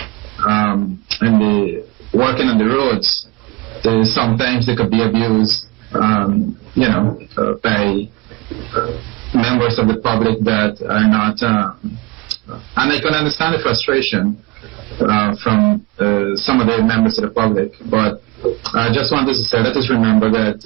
working on the roads. Sometimes they could be abused, by members of the public that are not. And I can understand the frustration from some of the members of the public. But I just wanted to say, let us remember that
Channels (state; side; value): quieter; left; 23.6 dB